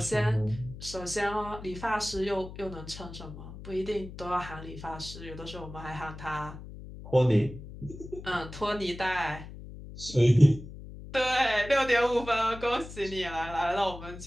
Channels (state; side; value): noise; left; hum, 13 dB below the sound